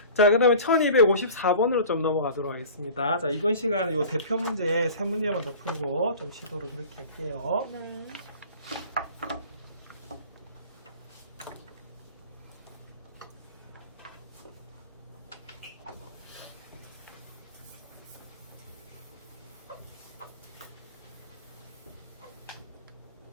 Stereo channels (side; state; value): both; inverted; correlation -0.41